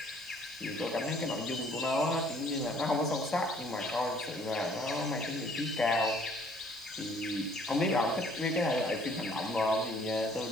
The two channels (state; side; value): noise; right; hiss, 24 dB below the sound